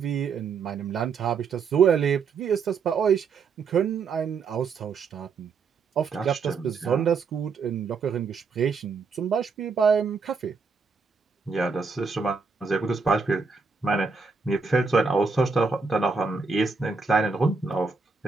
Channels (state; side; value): quieter; left; 4.9 dB